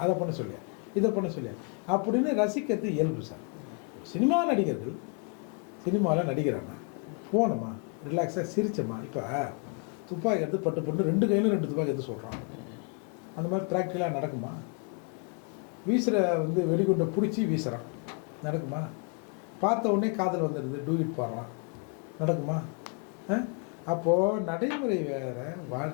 அதை பண்ண சொல்லியா, இதை பண்ண சொல்லியா அப்படின்னு ரசிக்கிறது இயல்பு சார். ஒரு சினிமா நடிகர்கள் சினிமாவில் நடிக்கிறானா போனோமா ரிலாக்ஸாக சிரிச்சோமா. இப்போ துப்பாக்கி எடுத்து பட்டு 2 கையிலும் 2 துப்பாக்கி எடுத்து சொல்கிறான். அந்த மாதிரி ப்ராக்டிக்கலாக நடக்குமா? வீசுகிற வெடிகுண்டை பிடிச்சி வீசுகிறான், நடக்குமா? பார்த்த உடனே காதல் வந்துடுது, டூயிட் பாடுறான், நடக்குமா? அப்போது நடைமுறை வேறு,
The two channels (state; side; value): quieter; right; 35.7 dB